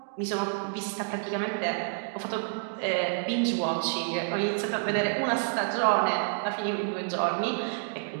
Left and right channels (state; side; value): silent; left; digital silence